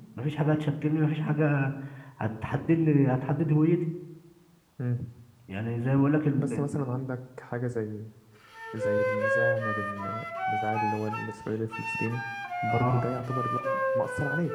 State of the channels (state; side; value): identical; both; correlation 1.00